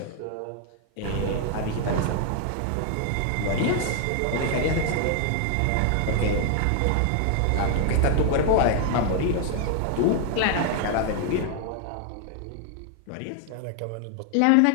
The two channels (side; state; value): both; different; correlation 0.00